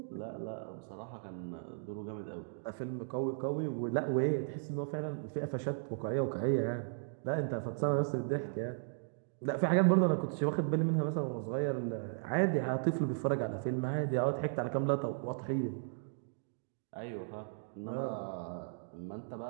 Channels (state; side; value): silent; left; digital silence